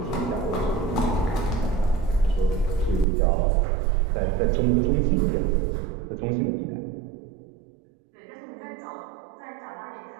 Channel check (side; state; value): left; drops out; at 3.1 s